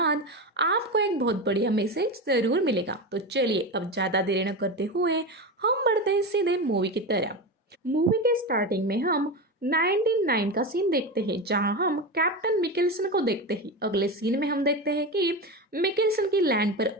आपको एक बहुत बढ़िया मैसेज जरूर मिलेगा। तो चलिए अब ज़्यादा देरी न करते हुए हम बढ़ते हैं सीधे मूवी की तरफ। मूवी के स्टार्टिंग में हम 1909 का सीन देखते हैं, जहां हम कैप्टन मिकेल्सन को देखते हैं। अगले सीन में हम देखते हैं कि मिकेल्सन की लैंड पर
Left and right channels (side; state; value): both; normal; correlation 0.20